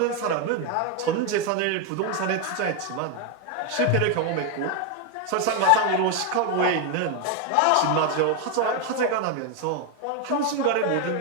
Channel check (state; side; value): different; both; correlation 0.01